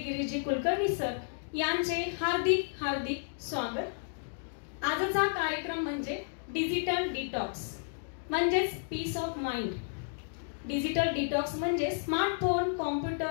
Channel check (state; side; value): silent; right; digital silence